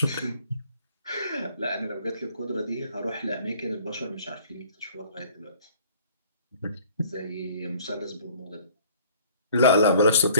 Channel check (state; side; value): inverted; both; correlation -0.53